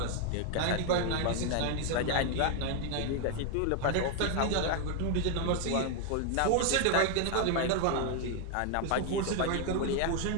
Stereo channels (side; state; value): both; different; correlation 0.00